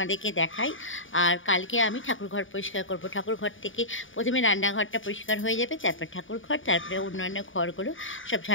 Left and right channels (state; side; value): late; right; 0.57 ms